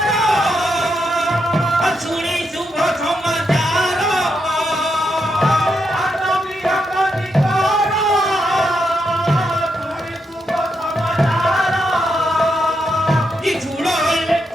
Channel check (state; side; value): normal; both; correlation 0.82